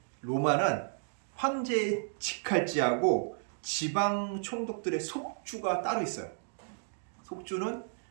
로마는 황제의 직할지하고 지방 총독들의 속주가 따로 있어요. 속주는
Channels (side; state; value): left; silent; digital silence